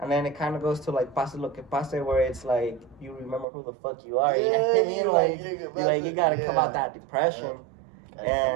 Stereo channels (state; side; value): drops out; left; at 3.5 s